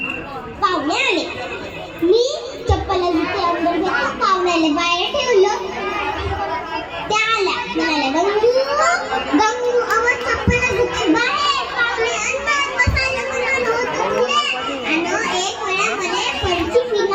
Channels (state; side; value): identical; both; correlation 1.00